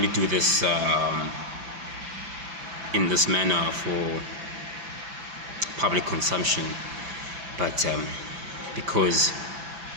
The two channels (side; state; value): left; late; 5.9 ms